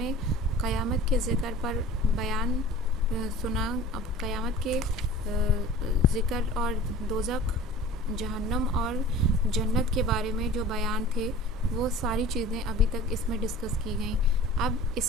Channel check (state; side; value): normal; both; correlation 0.42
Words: क़यामत के ज़िक्र पर बयान सुना। अब क़यामत के ज़िक्र और दोज़ख, जहन्नम और जन्नत के बारे में जो बयान थे वो सारी चीज़ें अभी तक इसमें डिस्कस की गई। अब